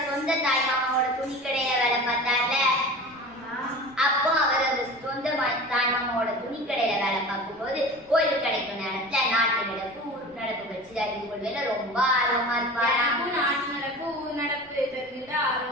சொந்த தாய்மாமாவோட துணிக்கடையில வேலை பார்த்தார்ல, அப்போ அவர் அந்த சொந்த தாய்மாமாவோட துணிக்கடையில வேலை பார்க்கும்போது ஓய்வு கிடைக்கும் நேரத்துல நாட்டு நடப்பு ஊர் நடப்பு வச்சு அறிந்து கொள்வதில ரொம்ப ஆர்வமா இருப்பாரு. நாட்டு நடப்பு ஊர் நடப்பு தெரிஞ்சுட்டு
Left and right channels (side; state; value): right; noise; rumble, 28 dB below the sound